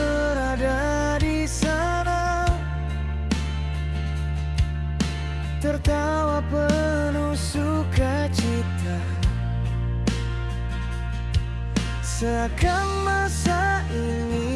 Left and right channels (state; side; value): identical; both; correlation 1.00